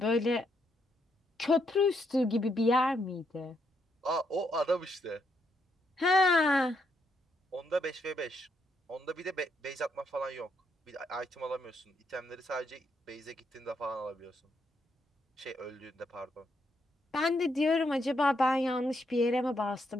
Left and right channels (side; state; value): both; normal; correlation 0.77